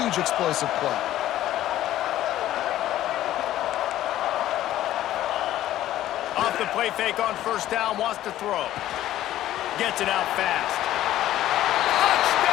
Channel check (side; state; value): right; quieter; 13.5 dB